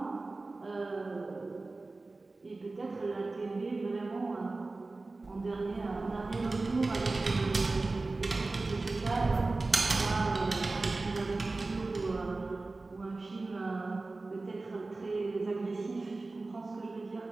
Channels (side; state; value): left; quieter; 3.4 dB